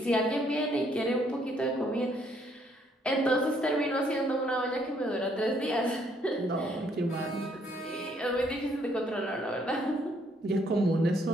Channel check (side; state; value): both; normal; correlation 0.68